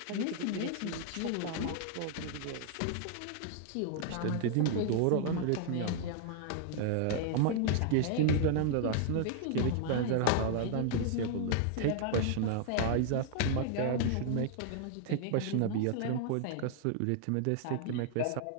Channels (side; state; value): both; different; correlation 0.00